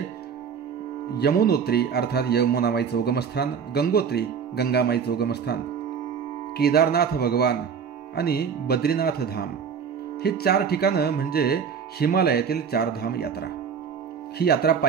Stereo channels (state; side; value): quieter; left; 6.8 dB